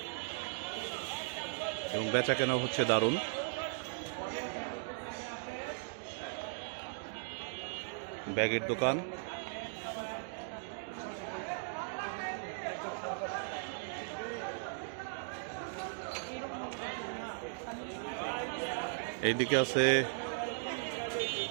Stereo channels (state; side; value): silent; left; digital silence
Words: এবং বেচা কেনা হচ্ছে দারুণ। ব্যাগের দোকান, এইদিকে আছে